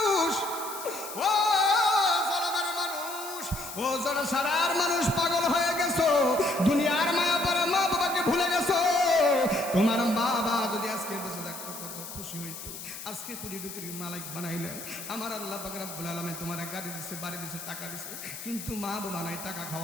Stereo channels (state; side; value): noise; left; hiss, 10 dB below the sound